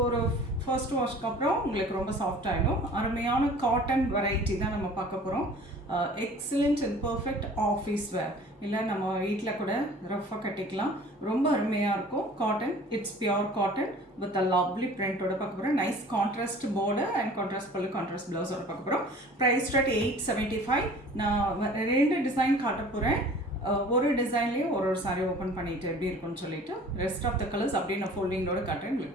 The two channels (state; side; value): normal; both; correlation 0.47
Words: ஒரு ஃபர்ஸ்ட் வாஷ்க்கு அப்புறம் உங்களுக்கு ரொம்ப சாஃப்ட் ஆகிடும். அருமையான காட்டன் வெரைட்டி தான் நம்ம பார்க்க போகிறோம். Excellent and perfect office wear, இல்லை நம்ம வீட்டில் கூட ரஃபாக கட்டிக்கலாம். ரொம்ப அருமையாக இருக்கும். Cotton, it's pure cotton with a lovely பிரிண்டோட பார்க்க போகிறோம். Nice contrast border and contrast pallu, contrast ப்ளவுஸோட பார்க்க போகிறோம். Price start 875. நான் ரெண்டு டிசைன் காட்ட போகிறேன். ஒரு டிசைன்லேயும் ஒரு சாரீ ஓப்பன் பண்ணிட்டு எப்படி இருக்குன்னு சொல்லிட்டு ரெஸ்ட் ஆஃப் த கலர்ஸ் அப்படியே நான் ஃபோல்டிங்கோட காட்டுறேன்.